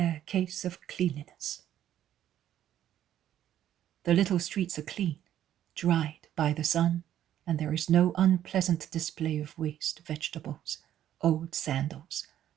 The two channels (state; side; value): quieter; left; 11.4 dB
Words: case of cleanliness. The little streets are clean, dried by the sun, and there is no unpleasant display of waste vegetables, old sandals,